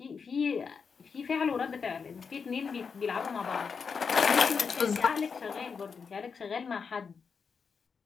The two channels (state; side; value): quieter; right; 5.7 dB